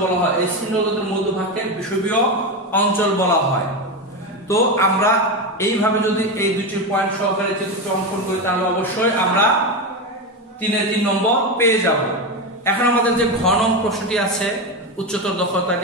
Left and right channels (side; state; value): both; normal; correlation 0.15